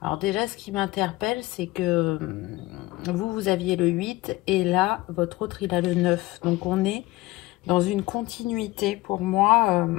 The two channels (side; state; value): right; quieter; 20.0 dB